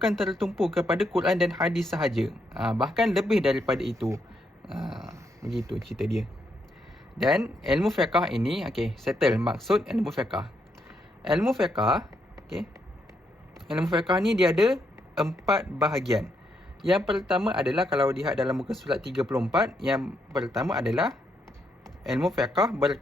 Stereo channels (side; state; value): both; normal; correlation 0.78